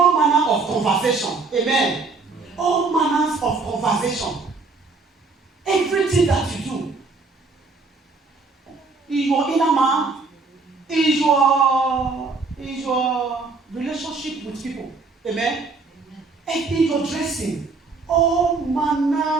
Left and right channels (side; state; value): left; quieter; 4.1 dB